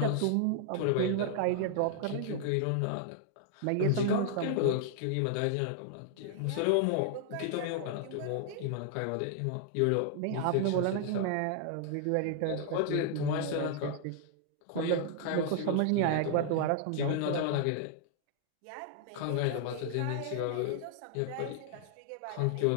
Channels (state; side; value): different; both; correlation -0.01